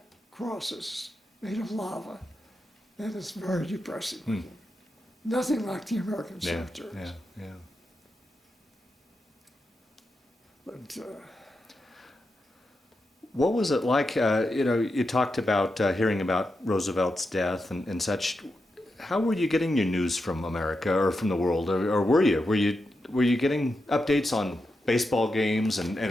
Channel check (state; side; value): normal; both; correlation 0.87